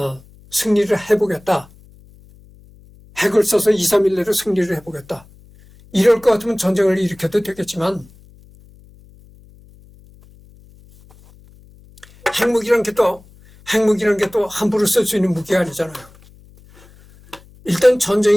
승리를 해보겠다. 핵을 써서 2, 3일 내로 승리를 해보겠다. 이럴 것 같으면 전쟁을 일으켜도 되겠지만 핵무기란 게 또 함부로 쓸 수 있는 무기가 아니잖아요. 일단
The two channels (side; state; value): left; noise; hum, 26 dB below the sound